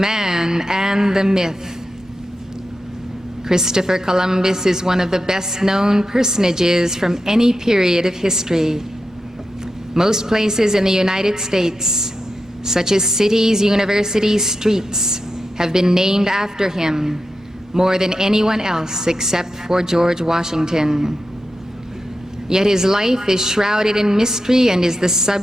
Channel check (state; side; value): normal; both; correlation 0.89